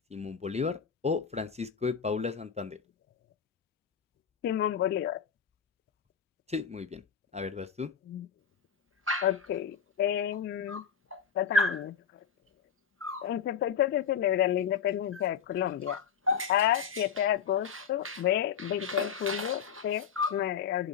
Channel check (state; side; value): quieter; right; 7.5 dB